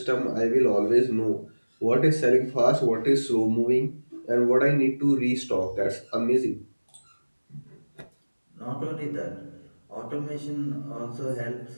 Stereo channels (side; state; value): both; inverted; correlation -1.00